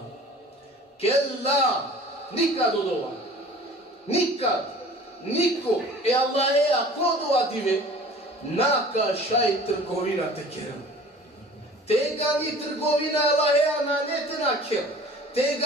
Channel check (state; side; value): normal; both; correlation 0.45